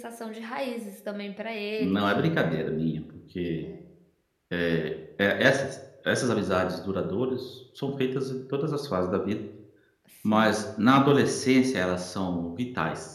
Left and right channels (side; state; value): both; identical; correlation 1.00